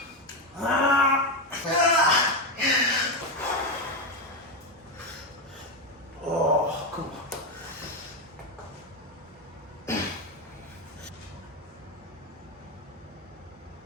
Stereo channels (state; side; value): normal; both; correlation 0.10